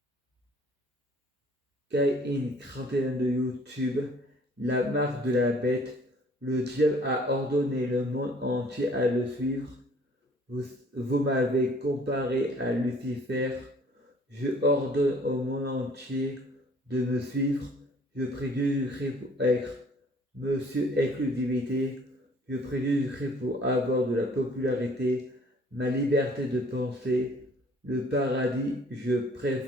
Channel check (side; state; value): both; normal; correlation 0.55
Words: Kai-In 31 de YouTube, la marque de la bête. Le diable a ordonné le monde entier à le suivre. Vous m'avez comparé à Lucifer. Je ordonne au monde entier de me suivre. Je prie Jésus-Christ pour être Monsieur Exclusivité. Je prie Jésus-Christ pour avoir de la popularité, ma liberté de penser, le paradis, je